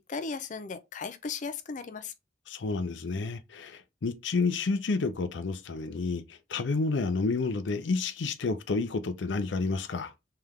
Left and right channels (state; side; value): quieter; right; 3.5 dB